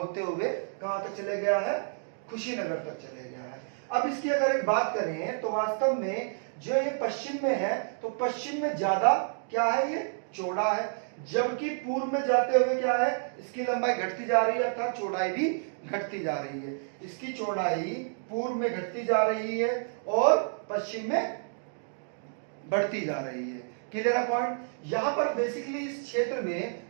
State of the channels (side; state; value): left; silent; digital silence